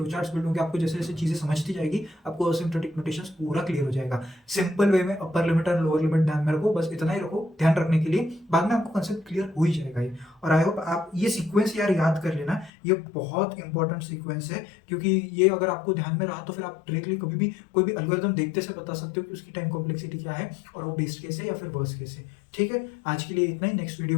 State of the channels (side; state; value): right; drops out; at 12.7 s